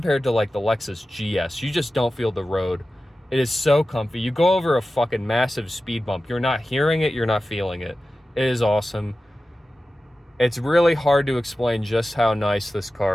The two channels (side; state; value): both; normal; correlation 0.94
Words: to like the Lexus GS, you just don't feel the road. It is so comfy. You go over a fucking massive speed bump. You're not hearing it, you're not feeling it. It is awesome. It's really hard to explain just how nice this